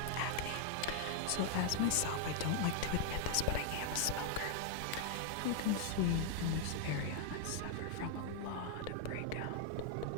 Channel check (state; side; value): different; both; correlation 0.00